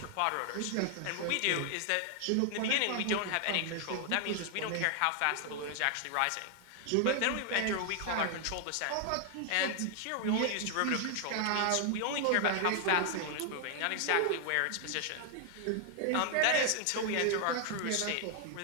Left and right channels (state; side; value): different; both; correlation 0.00